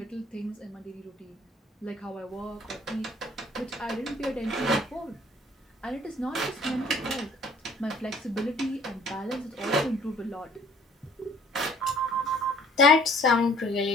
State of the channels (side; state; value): both; normal; correlation 0.56